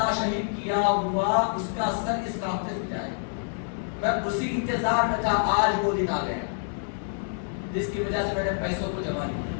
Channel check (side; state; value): right; silent; digital silence